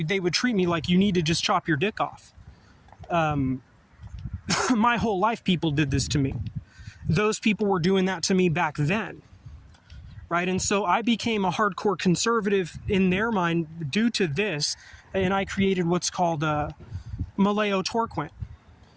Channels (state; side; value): identical; both; correlation 1.00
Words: me like, you need to just chop your dick off. My whole life, people did this to me. Those people were doing that to me back then. Right? And so I became a hardcore conservative in their mind due to this. And I created what's called Maleo Torquent.